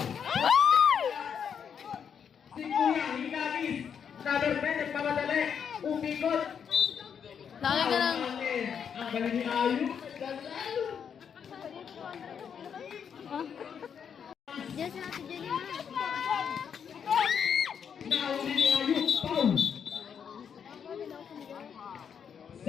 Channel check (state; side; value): quieter; right; 7.5 dB